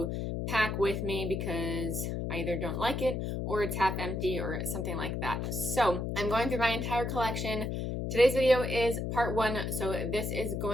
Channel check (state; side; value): noise; left; hum, 2 dB below the sound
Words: pack with me because I either don't like it or it's half empty or something like that. So I'm going through my entire collection. Today's video is part one, so this is